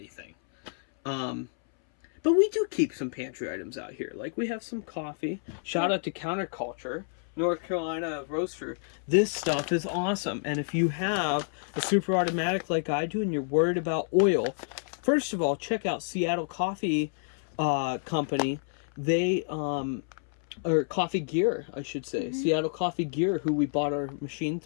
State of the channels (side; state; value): right; silent; 59 dB below the other